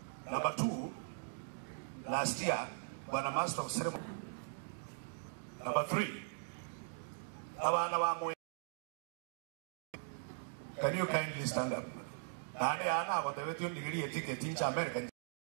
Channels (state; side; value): silent; left; digital silence